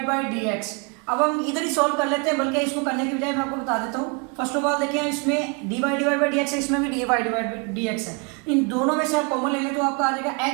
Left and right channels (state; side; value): quieter; left; 32.7 dB